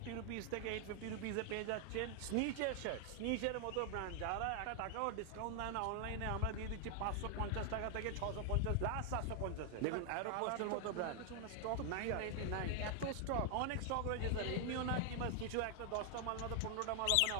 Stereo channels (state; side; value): different; both; correlation 0.00